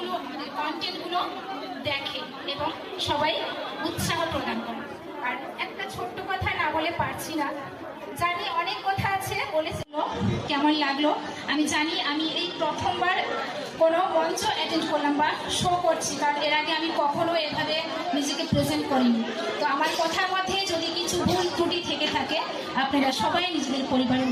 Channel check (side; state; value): both; identical; correlation 1.00